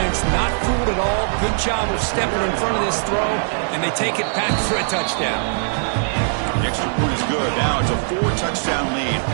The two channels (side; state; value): left; silent; 62 dB below the other